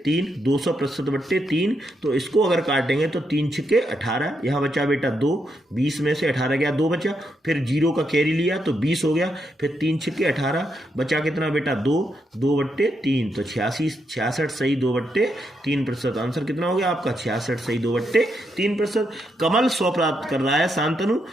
3, 200% बट्टे 3। तो इसको अगर काटेंगे तो 3 छक्के 18, यहाँ बचा बेटा 2, 20 में से 18 गया, 2 बचा, फिर 0 का कैरी लिया तो 20 हो गया, फिर 3 छक्के 18, बचा कितना बेटा 2, 2 बट्टे 3, तो 66 सही 2 बट्टे 3%। आंसर कितना हो गया आपका 66 सही 2 बट्टे 3%। कमल 100 प्राप्त कर रहा है, शांतनु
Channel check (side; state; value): both; normal; correlation 0.80